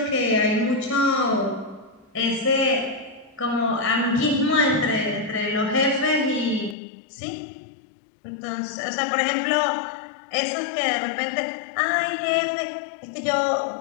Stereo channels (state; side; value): drops out; right; at 6.8 s